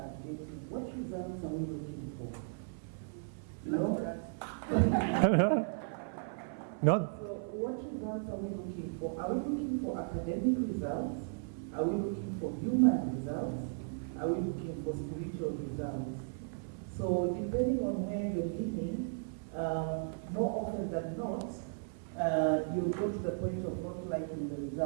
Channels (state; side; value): silent; left; 54 dB below the other